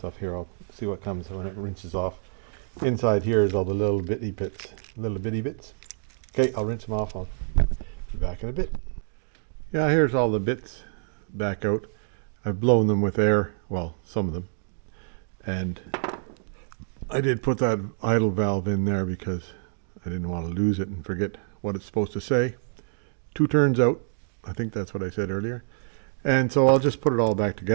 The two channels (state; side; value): silent; left; 59 dB below the other